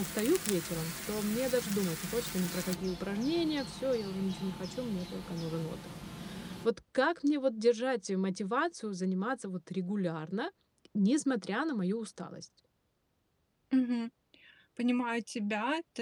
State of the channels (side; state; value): both; identical; correlation 1.00